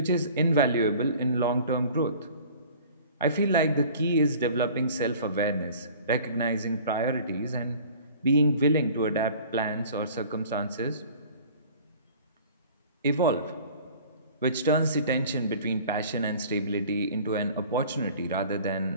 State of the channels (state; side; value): inverted; both; correlation -0.46